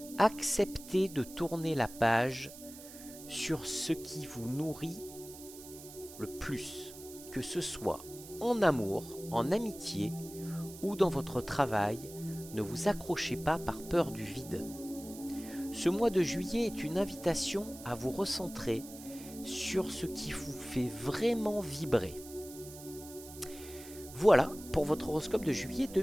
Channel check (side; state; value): right; noise; hiss, 16 dB below the sound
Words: Acceptez de tourner la page sur ce qui vous nourrit le plus, que ce soit en amour, en amitié ou dans votre travail. Ne vous accrochez pas par peur du vide. Ce mois de juillet est une invitation à vous recentrer sur ce qui vous fait vraiment vibrer. Voilà pour votre horoscope de juillet